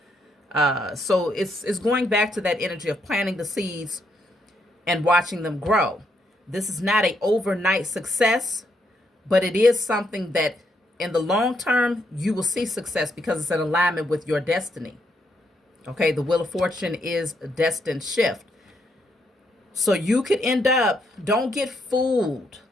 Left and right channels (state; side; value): normal; both; correlation 0.76